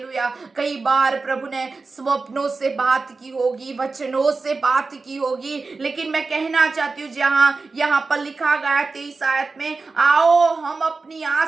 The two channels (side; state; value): left; quieter; 4.0 dB